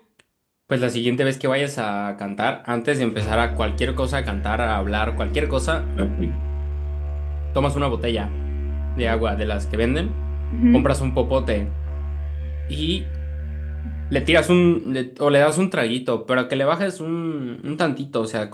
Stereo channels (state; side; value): identical; both; correlation 1.00